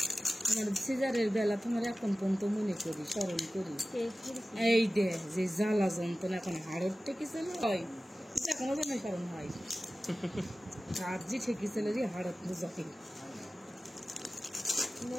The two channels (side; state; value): both; normal; correlation 0.96